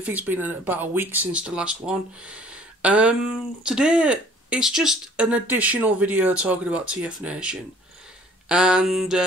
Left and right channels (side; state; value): both; normal; correlation 0.54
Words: it's been about a week since the last one. Today it's just an additional video talking about TFNation. And